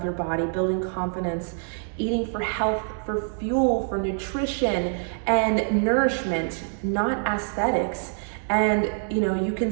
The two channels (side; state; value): left; silent; digital silence